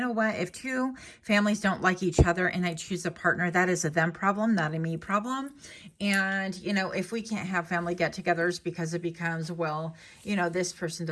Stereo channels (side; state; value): both; identical; correlation 1.00